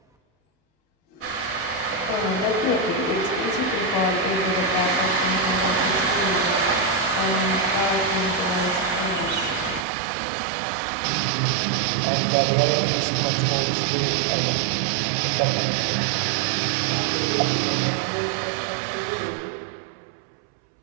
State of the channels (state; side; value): drops out; left; at 9.9 s